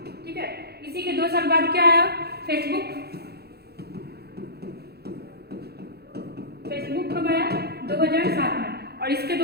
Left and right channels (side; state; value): left; late; 0.47 ms